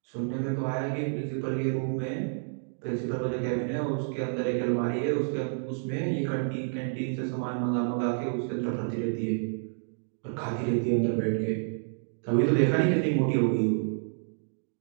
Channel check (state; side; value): silent; left; digital silence